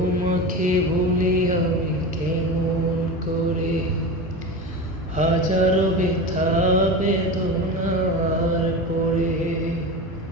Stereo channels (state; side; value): normal; both; correlation 0.26